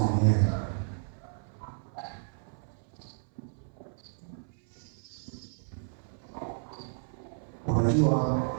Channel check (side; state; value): left; silent; 56 dB below the other